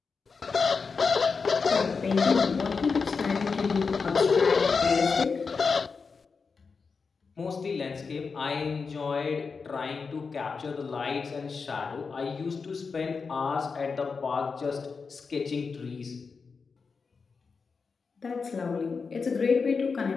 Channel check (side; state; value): right; quieter; 5.0 dB